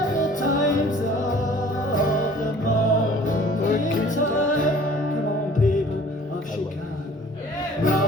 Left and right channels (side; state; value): both; normal; correlation 0.51